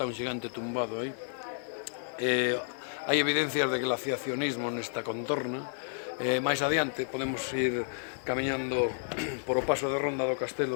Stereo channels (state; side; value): silent; right; 57 dB below the other